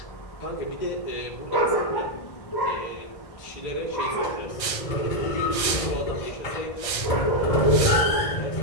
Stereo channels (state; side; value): late; right; 1.3 ms